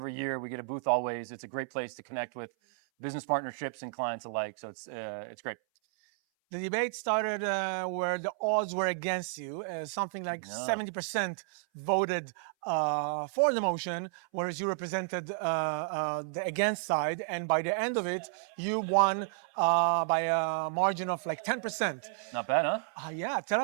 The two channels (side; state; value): left; silent; 56 dB below the other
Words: year. We get a booth always. It's a great place to connect with business partnerships and clients alike. So it's great. The debate started where the odds were against you. Something like No. 70% voted for the motion, whereas you represented the against side. And by the end of it, you won by a margin of like 10%. Not bad, huh? Yeah, tell